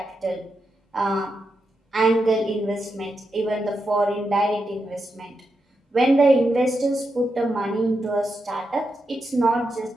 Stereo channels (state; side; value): normal; both; correlation 0.86